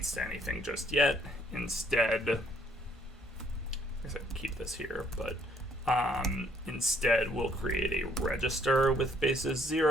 to anything just yet. Instead, I guess I can keep this here, but instead we'll create a register with basis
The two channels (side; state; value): both; normal; correlation 0.66